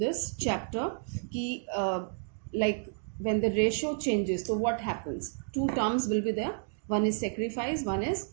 this chapter ki like when the ratio changes, so what happens, 2 terms will be there, one is sacrifice, one is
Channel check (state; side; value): silent; left; digital silence